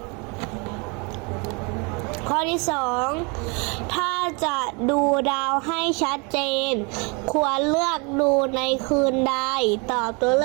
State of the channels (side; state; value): left; quieter; 31.5 dB